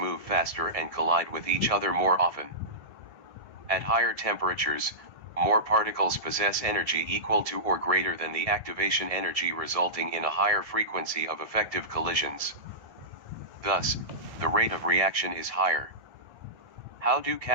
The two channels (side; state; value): left; late; 1.7 ms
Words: faster and collide with each other more often. At higher temperatures, more particles possess energy equal to or greater than the activation energy, resulting in a higher frequency of effective collisions. Thus, the rate of reaction is higher. How do